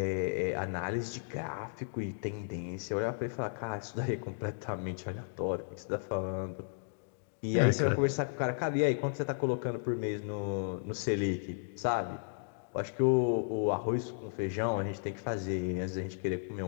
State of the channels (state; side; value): silent; right; digital silence